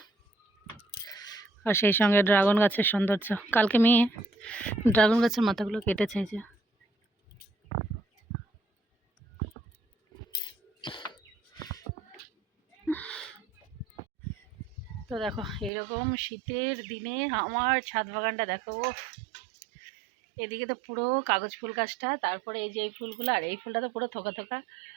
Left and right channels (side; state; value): left; drops out; at 15.7 s